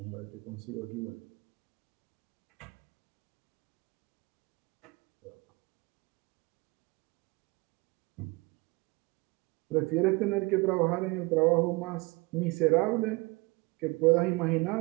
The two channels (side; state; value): left; quieter; 25.3 dB